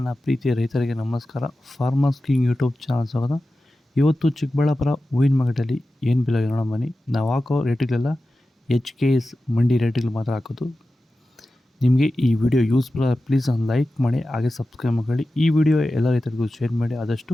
ಪ್ರೀತಿಯ ರೈತರಿಗೆ ನಮಸ್ಕಾರ. ಫಾರ್ಮರ್ಸ್ ಕಿಂಗ್ ಯೂಟ್ಯೂಬ್ ಚಾನಲ್ ಸ್ವಾಗತ. ಇವತ್ತು ಚಿಕ್ಕಬಳ್ಳಾಪುರ ಹೂವಿನ ಮಾರ್ಕೆಟಲ್ಲಿ ಏನು ಬೆಲೆ ನೋಡೋಣ ಬನ್ನಿ. ನಾವು ಹಾಕೋ ರೇಟ್ಗಳೆಲ್ಲ HKS ಮಂಡಿ ರೇಟ್ಗಳು ಮಾತ್ರ ಹಾಕೋದು. ನಿಮಗೆ ಈ ವಿಡಿಯೋ ಯೂಸ್ಫುಲ್ ಪ್ಲೀಸ್ ಒಂದು ಲೈಕ್ ಮಾಡಿ, ಹಾಗೆ ಸಬ್ಸ್ಕ್ರೈಬ್ ಮಾಡಿ. ಈ ವಿಡಿಯೋ ಎಲ್ಲ ರೈತರಿಗೂ ಶೇರ್ ಮಾಡಿ ಆದಷ್ಟು.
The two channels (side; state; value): both; normal; correlation 0.94